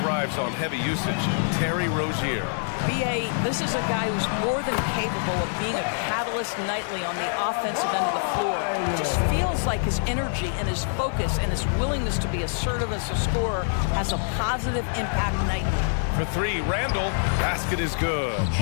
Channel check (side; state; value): right; silent; 60 dB below the other